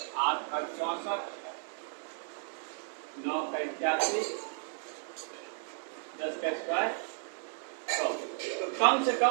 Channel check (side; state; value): left; silent; 55 dB below the other